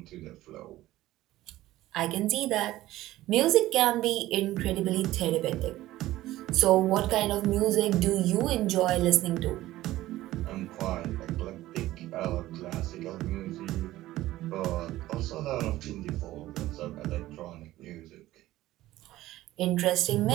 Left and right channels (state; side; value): quieter; left; 15.9 dB